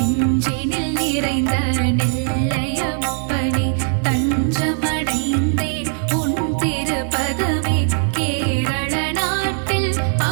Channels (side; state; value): left; silent; 62 dB below the other